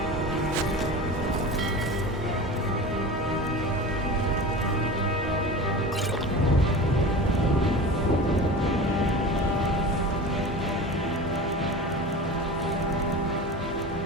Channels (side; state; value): both; normal; correlation 0.32